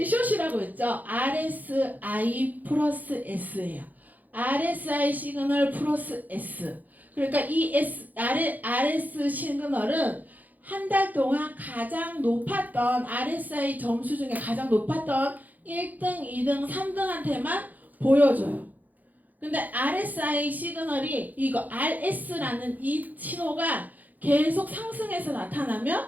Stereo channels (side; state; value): left; late; 0.082 ms